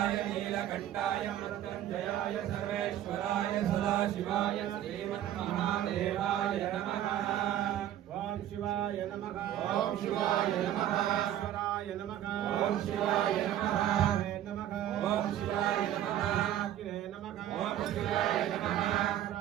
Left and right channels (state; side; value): quieter; left; 11.9 dB